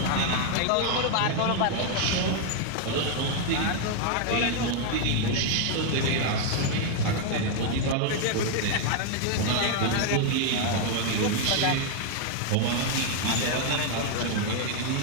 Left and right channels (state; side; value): different; both; correlation 0.00